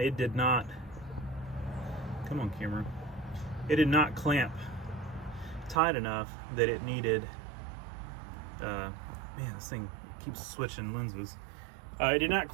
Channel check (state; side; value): drops out; left; at 5.8 s